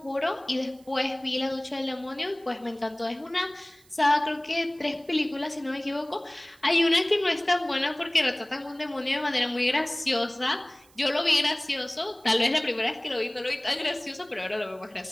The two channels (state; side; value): noise; right; hiss, 29 dB below the sound